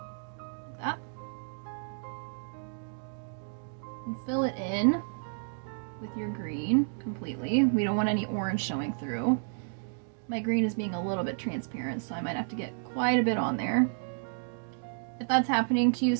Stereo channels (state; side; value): silent; left; digital silence